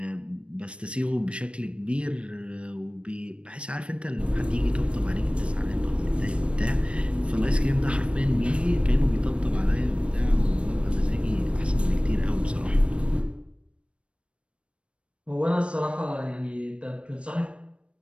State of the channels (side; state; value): left; late; 0.060 ms